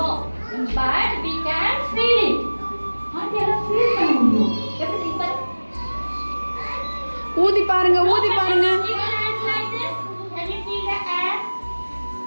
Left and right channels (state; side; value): inverted; both; correlation -1.00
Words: but we can feel it. ஆண்டியால ஃபீல் பண்ண முடியும். எப்படி இப்ப ஊதி பாருங்க ஊதி பாருங்க. Can you feel the air?